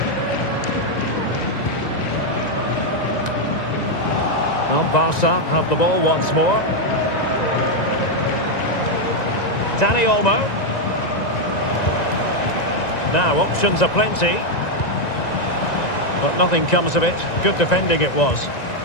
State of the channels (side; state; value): right; late; 1.9 ms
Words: Well, Barca have the ball once more. Dani Olmo. Now, options are plenty. But nothing comes of it. Good defending it was.